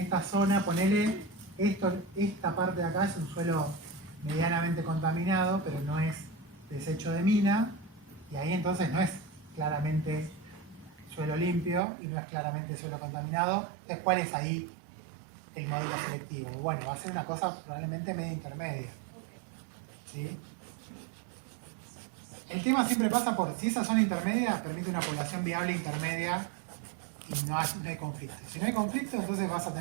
zona, ponele, esta parte de acá es un suelo medianamente contaminado, pero no es desecho de mina, y ahí entonces no es claramente suelo limpio y no es claramente suelo contaminado. Entonces, ¿cuál es ahí el modelo selectivo? Bueno, va a ser una cosa probablemente media intermedia. ¿Sí? El tema siempre pasa por si esa zona intermedia permite una población viable intermedia y no hay conflicto. Si no hay conflicto, entonces vas a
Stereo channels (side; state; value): left; drops out; at 11.8 s